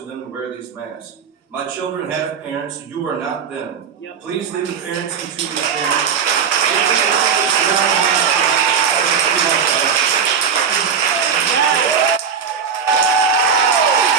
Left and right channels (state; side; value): quieter; left; 6.8 dB